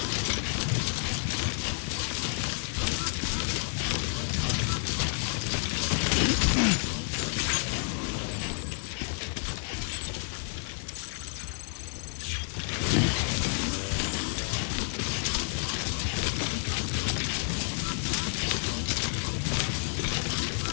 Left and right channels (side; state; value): right; silent; 56 dB below the other